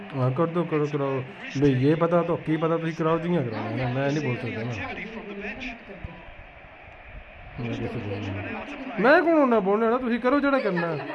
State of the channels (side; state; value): both; identical; correlation 1.00